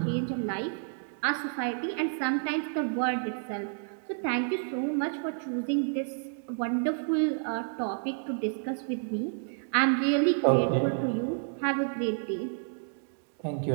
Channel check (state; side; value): silent; left; digital silence